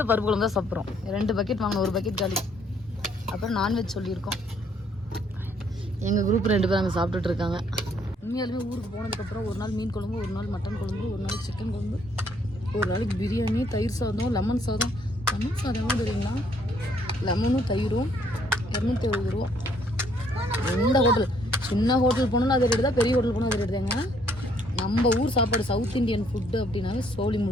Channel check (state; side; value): normal; both; correlation 0.66